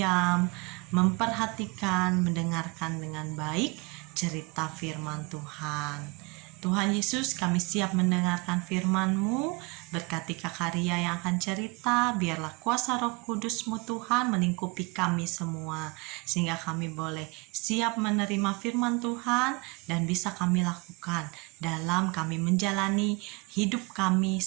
memperhatikan, mendengarkan dengan baik cerita firman Tuhan. Tuhan Yesus, kami siap mendengarkan firman-Mu. Berkati Kak Ria yang akan cerita, biarlah kuasa Roh Kudus-Mu Tuhan melingkupi kami semua, sehingga kami boleh siap menerima firman Tuhan dan bisa kami lakukan dalam kami menjalani hidup kami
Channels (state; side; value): quieter; left; 27.8 dB